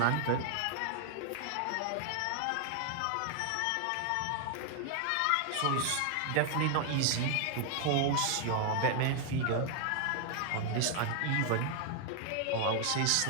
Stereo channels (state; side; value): different; both; correlation 0.00